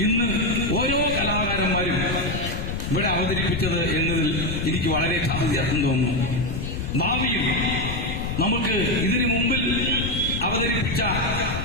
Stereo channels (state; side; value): noise; left; rumble, 4 dB below the sound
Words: ഇന്ന് ഓരോ കലാകാരന്മാരും ഇവിടെ അവതരിപ്പിച്ചത് എന്നതിൽ എനിക്ക് വളരെ സന്തോഷം തോന്നുന്നു. ഭാവിയിൽ നമുക്ക് ഇതിനു മുമ്പിൽ അവതരിപ്പിച്ച